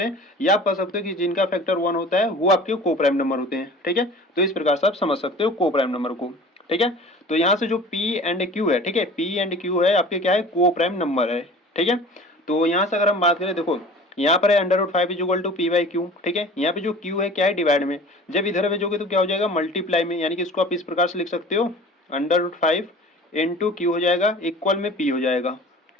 हैं, या आप कह सकते हो कि जिनका फैक्टर 1 होता है वो आपके को प्राइम नंबर होते हैं। ठीक है, तो इस प्रकार से आप समझ सकते हो को प्राइम नंबर को। ठीक है, तो यहाँ से जो P एंड Q है, ठीक है, P एंड Q है आपके क्या है, को प्राइम नंबर है। ठीक है, तो यहाँ से अगर हम बात करें, देखो यहाँ पर है √5 इज इक्वल टू p/q। ठीक है, यहाँ पे जो q है क्या है, डिवाइड में, जब इधर भेजोगे तो क्या हो जाएगा, मल्टीप्लाई में, यानी कि इसको आप इस प्रकार से लिख सकते हो √5 इंटू q हो जाएगा इक्वल में p हो जाएगा।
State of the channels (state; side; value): normal; both; correlation 0.42